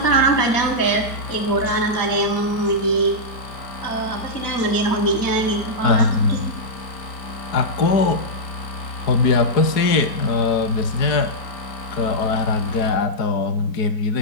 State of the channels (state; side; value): late; right; 4.7 ms